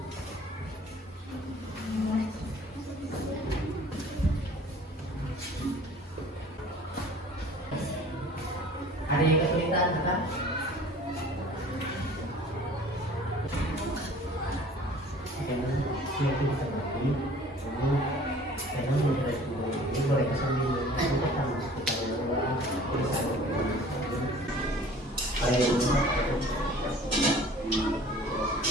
Ada yang kesulitan kan?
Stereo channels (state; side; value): normal; both; correlation 0.48